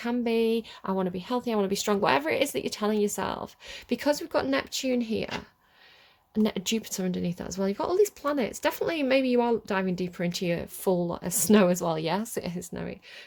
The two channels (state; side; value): identical; both; correlation 1.00